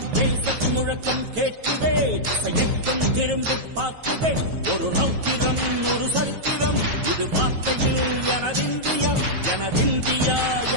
தேசத்தின் முழக்கம் கேட்குதே, திசையெட்டும் திரும்பி பார்க்குதே. ஒரு ரௌத்திரம் ஒரு சரித்திரம், இது வார்த்தையில் எனதிந்தியா எனதிந்தியா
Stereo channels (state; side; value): late; left; 9.2 ms